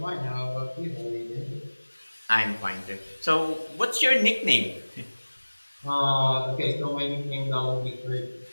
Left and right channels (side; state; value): both; inverted; correlation -1.00